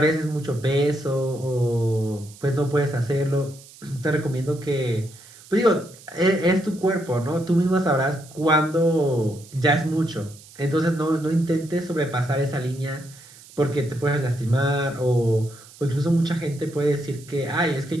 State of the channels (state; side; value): noise; right; hiss, 21 dB below the sound